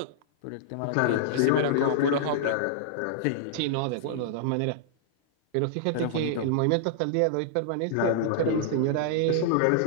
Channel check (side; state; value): both; different; correlation -0.02